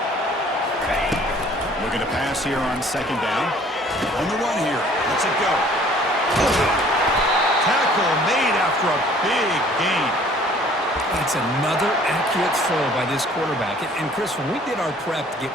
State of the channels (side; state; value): both; normal; correlation 0.54